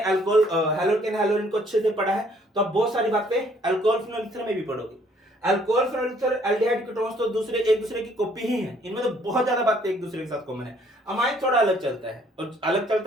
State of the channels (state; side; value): normal; both; correlation 0.63